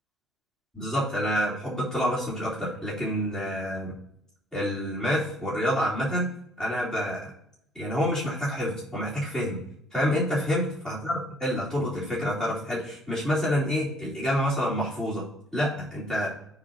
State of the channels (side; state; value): both; normal; correlation 0.61